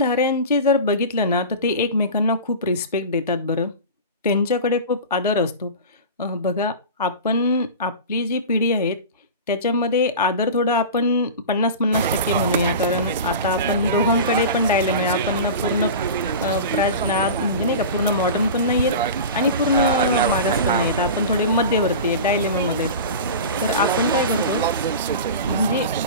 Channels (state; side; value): inverted; both; correlation -0.31